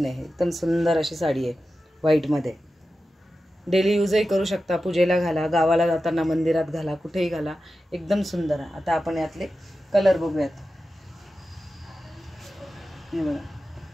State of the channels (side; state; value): both; normal; correlation 0.93